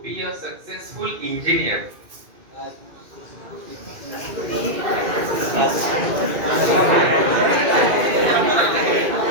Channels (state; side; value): late; left; 2.4 ms